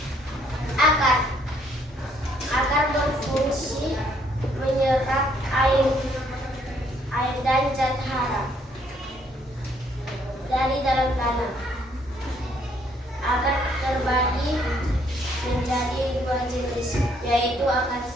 Akar berfungsi menyerap air dan zat hara dari dalam tanah. Akar terbagi menjadi dua jenis, yaitu akar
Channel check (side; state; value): both; normal; correlation 0.67